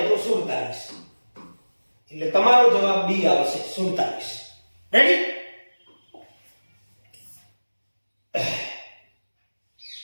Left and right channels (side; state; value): both; inverted; correlation -1.00